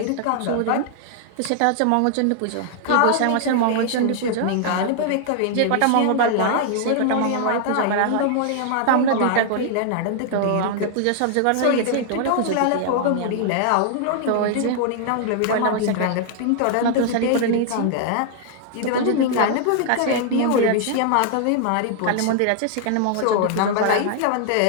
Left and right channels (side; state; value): both; different; correlation 0.00